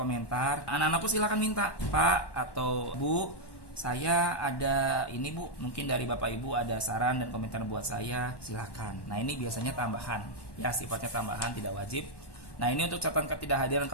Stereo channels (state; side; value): late; right; 1.1 ms